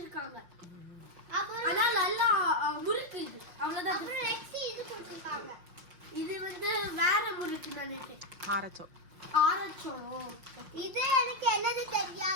அப்புறம் ஆனா நல்லா முறுக்கு இது. அவ்வளவுதான். அப்புறம் நெக்ஸ்ட் இது கொடுத்திருக்காங்க. இது வந்து வேற முறுக்கு நினைக்கிறேன். ஆரச்சோ. இது எனக்கு என்னது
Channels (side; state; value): left; late; 5.6 ms